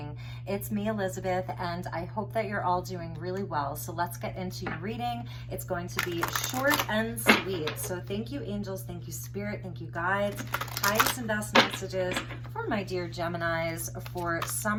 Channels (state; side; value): identical; both; correlation 1.00